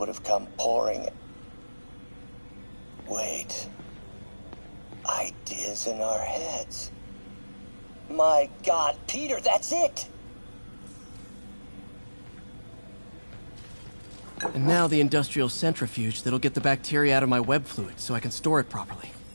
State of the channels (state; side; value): inverted; both; correlation -1.00